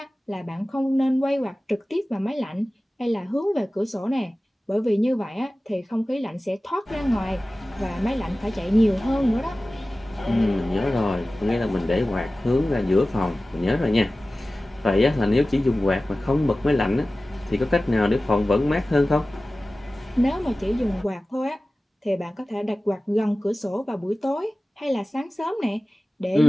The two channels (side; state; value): both; normal; correlation 0.96